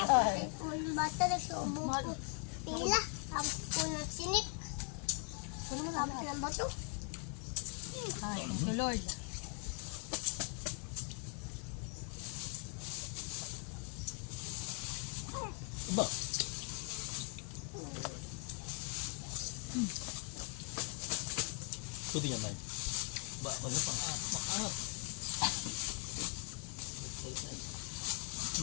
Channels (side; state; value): right; quieter; 35.0 dB